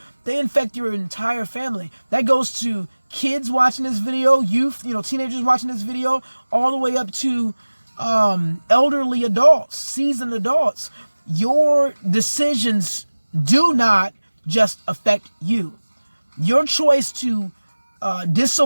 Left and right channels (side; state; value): both; inverted; correlation -1.00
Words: They infect your entire family. That goes to kids watching this video, youth, teenagers watching this video, all the way up to elderly adults, seasoned adults. Your decisions do not just affect you. Your choice to